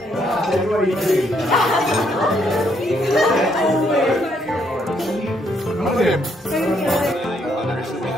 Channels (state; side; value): normal; both; correlation 0.72